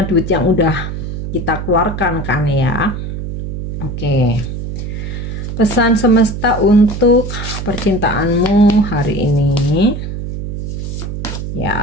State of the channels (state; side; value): noise; right; hum, 6 dB below the sound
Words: duit yang udah kita keluarkan kan ya. Oke. Pesan semesta untuk percintaanmu hari ini.